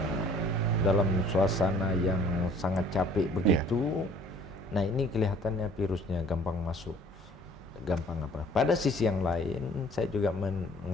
dalam suasana yang sangat capek begitu. Nah, ini kelihatannya virusnya gampang masuk gampang apa. Pada sisi yang lain, saya juga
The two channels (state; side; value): normal; both; correlation 0.55